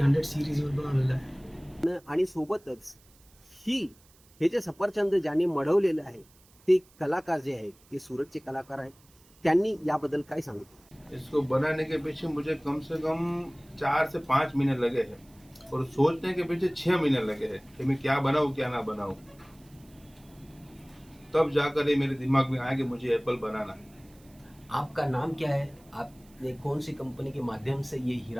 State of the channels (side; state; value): right; noise; hiss, 29 dB below the sound